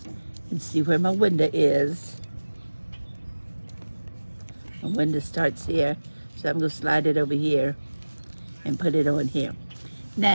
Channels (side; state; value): both; inverted; correlation -1.00